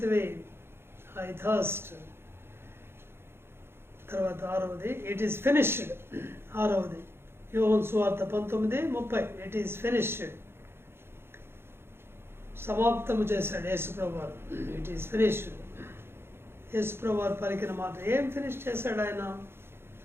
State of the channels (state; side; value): late; left; 0.11 ms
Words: ఐ థర్స్ట్. తర్వాత 6వది, ఇట్ ఈస్ ఫినిష్డ్. 6వది యోహాను సువార్త 19:30, ఇట్ ఈస్ ఫినిష్డ్, సమాప్తము చేశాడు యేసుప్రభు వారు. It is finished. యేసుప్రభు వారు పలికిన మాట ఏం ఫినిష్ చేశాడు ఆయన?